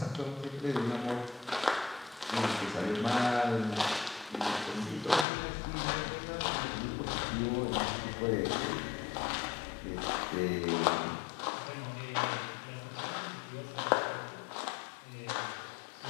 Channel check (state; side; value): drops out; right; at 5.2 s